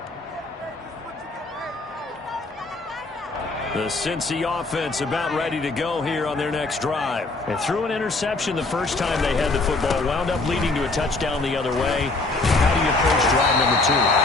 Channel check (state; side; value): quieter; right; 3.3 dB